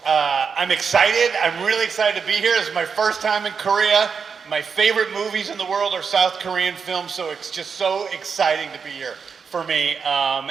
I'm excited. I'm really excited to be here. This is my first time in Korea. My favorite movies in the world are South Korean films, so it's just so exciting to be here for me.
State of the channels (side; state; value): left; quieter; 5.9 dB